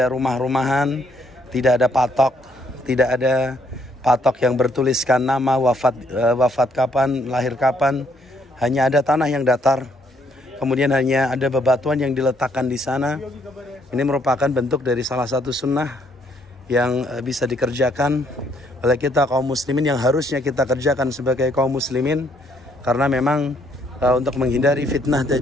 rumah-rumahan, tidak ada patok, tidak ada patok yang bertuliskan nama, wafat kapan, lahir kapan. Hanya ada tanah yang datar. Kemudian hanya ada bebatuan yang diletakkan di sana. Ini merupakan bentuk dari salah satu sunnah yang bisa dikerjakan oleh kita kaum muslimin yang harusnya kita kerjakan sebagai kaum muslimin, karena memang untuk menghindari fitnah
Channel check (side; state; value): both; normal; correlation 0.69